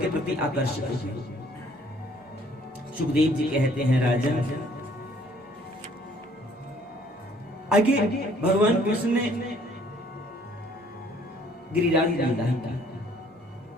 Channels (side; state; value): both; normal; correlation 0.60